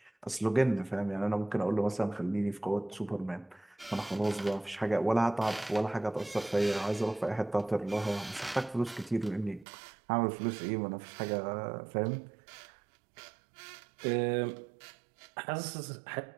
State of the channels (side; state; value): left; drops out; at 9.7 s